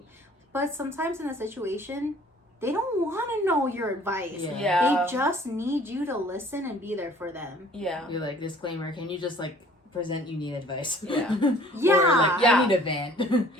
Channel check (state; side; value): normal; both; correlation 0.53